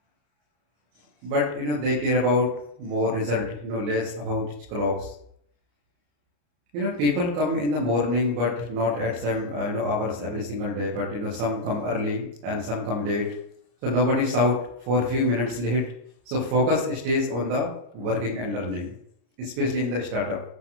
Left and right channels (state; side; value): late; left; 34 ms